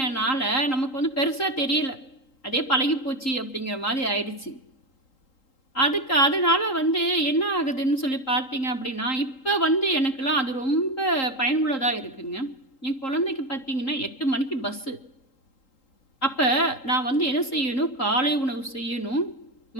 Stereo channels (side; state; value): right; late; 3.8 ms